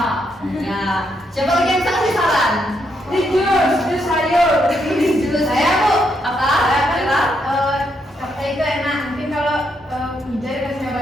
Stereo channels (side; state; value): both; normal; correlation 0.78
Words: Ya. Siapa lagi yang bisa kasih saran? Di jus sayur. Jus saya Bu. Apa? Capcay itu enak. Mungkin kalau Wija dikasih